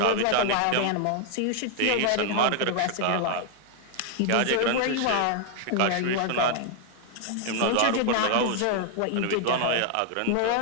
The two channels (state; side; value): different; both; correlation 0.00